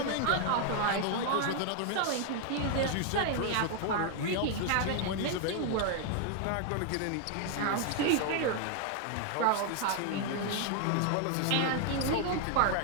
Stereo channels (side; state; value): both; different; correlation 0.00